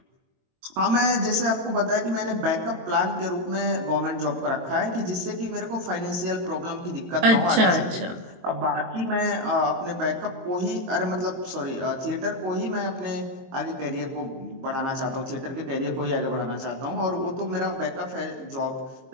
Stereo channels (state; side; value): late; left; 22 ms